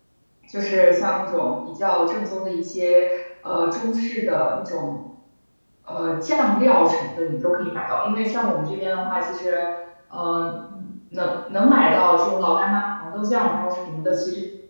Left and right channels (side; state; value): both; inverted; correlation -1.00